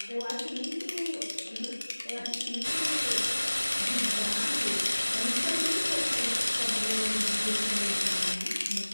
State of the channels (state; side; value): inverted; both; correlation -1.00